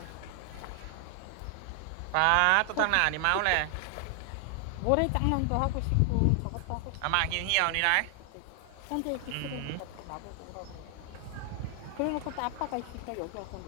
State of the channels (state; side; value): different; both; correlation 0.00